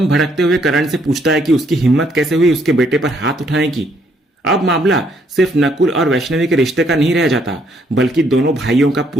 भड़कते हुए करण से पूछता है कि उसकी हिम्मत कैसे हुई उसके बेटे पर हाथ उठाने की। अब मामला सिर्फ नकुल और वैष्णवी के रिश्ते का नहीं रह जाता, बल्कि दोनों भाइयों का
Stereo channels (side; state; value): both; normal; correlation 0.69